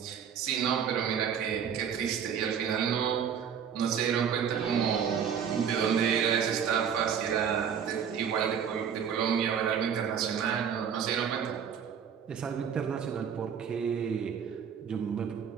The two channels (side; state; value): left; quieter; 7.8 dB